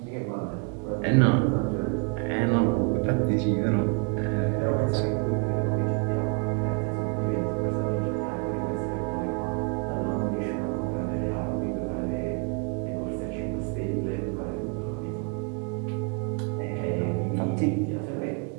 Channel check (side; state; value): left; quieter; 35.3 dB